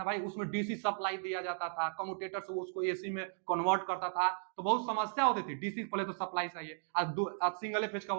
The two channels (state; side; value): silent; left; digital silence